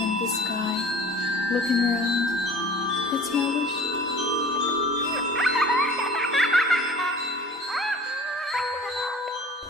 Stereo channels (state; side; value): normal; both; correlation 0.45